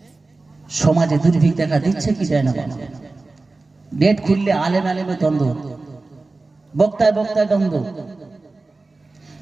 সমাজে দুর্ভিক্ষ দেখা দিচ্ছে কি যায় না। ডেট খুললে আলেম আলেমে দ্বন্দ্ব, বক্তায় বক্তায় দ্বন্দ্ব।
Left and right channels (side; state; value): left; quieter; 3.4 dB